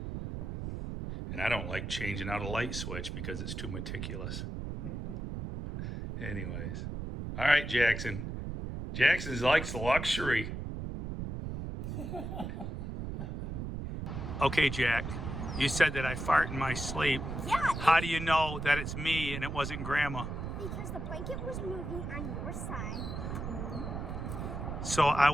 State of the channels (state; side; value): noise; right; rumble, 5 dB below the sound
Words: And I don't like changing out a light switch because it's too meticulous. Anyways. All right, Jackson. Jackson likes luxury. Okay, Jack. You said that I fart in my sleep. Yeah. How do you know that it's me and it wasn't Grandma? Because the blanket was moving on your side. So I